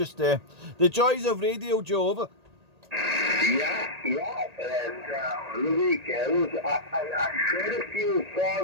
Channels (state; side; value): late; left; 1.8 ms